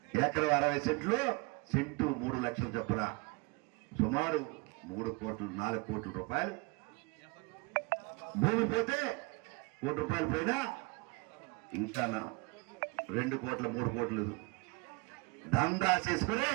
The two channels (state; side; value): quieter; left; 27.5 dB